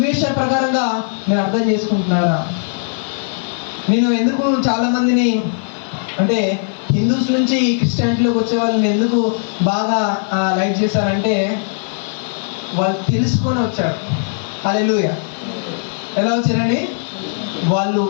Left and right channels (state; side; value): silent; right; 59 dB below the other